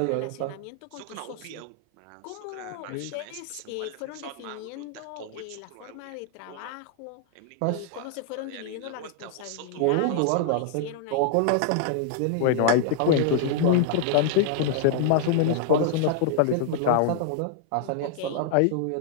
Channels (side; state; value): both; different; correlation 0.00